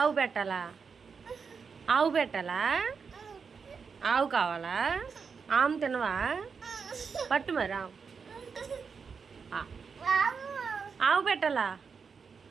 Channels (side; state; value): left; quieter; 5.7 dB